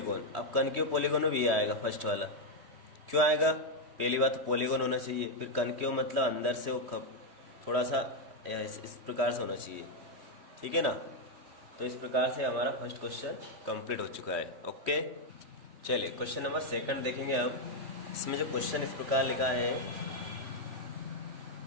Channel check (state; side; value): late; left; 3.1 ms